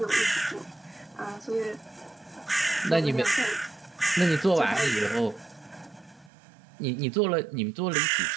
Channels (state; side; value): drops out; left; at 6.3 s